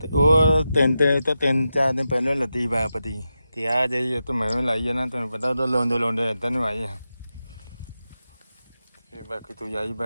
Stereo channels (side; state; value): both; inverted; correlation -0.90